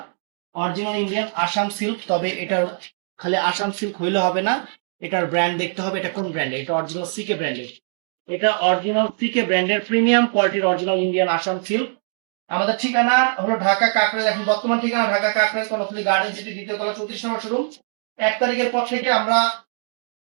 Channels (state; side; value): silent; left; 61 dB below the other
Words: Original Indian Assam silk. তবে এটার খালি আসাম সিল্ক হইলে হবে না, এটার ব্র্যান্ড দেখতে হবে। এটা কোন ব্র্যান্ডের? এটা অরিজিনাল সিকে ব্র্যান্ডের। এটা অরিজিনাল সিকে ব্র্যান্ডের প্রিমিয়াম কোয়ালিটির অরিজিনাল ইন্ডিয়ান আসাম সিল্ক। আমাদের ঠিকানা হলো ঢাকা কাকরাইল। এখন বর্তমান ঠিকানা ঢাকা কাকরাইল, কর্ণফুলী গার্ডেন সিটি, দ্বিতীয় তলা, 34 নম্বর শোরুম। 1 তারিখের পর থেকে আমরা